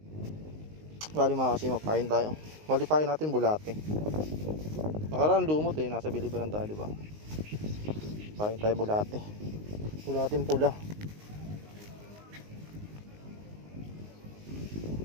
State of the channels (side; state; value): left; late; 19 ms